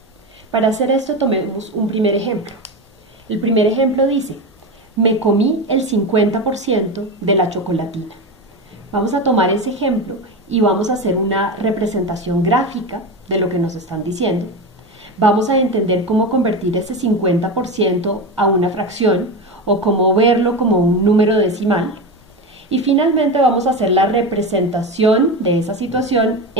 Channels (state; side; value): normal; both; correlation 0.20